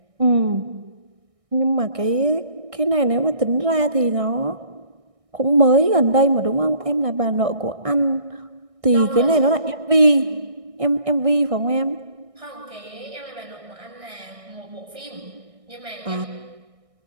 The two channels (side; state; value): left; late; 1.6 ms